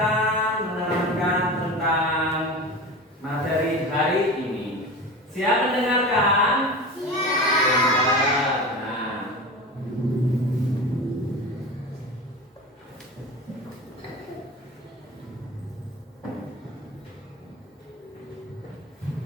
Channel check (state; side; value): normal; both; correlation 0.31